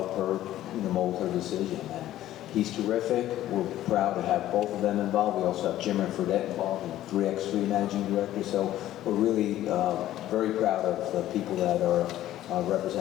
her, mold her decision. And he's terrific. We're proud to have both of them involved. We also have Jim and Fredette involved, and 3x3 managing director. So we're really very proud of the people that are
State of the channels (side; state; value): right; quieter; 13.5 dB